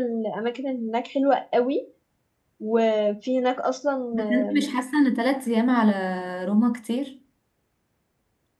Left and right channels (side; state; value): both; identical; correlation 1.00